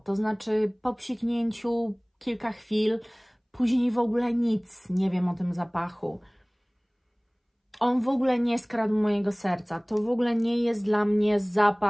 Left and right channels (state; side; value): identical; both; correlation 1.00